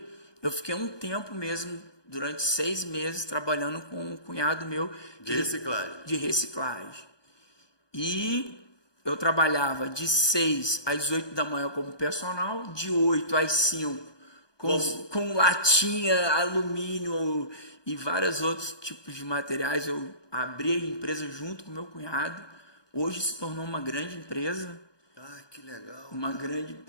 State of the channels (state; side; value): late; right; 1.2 ms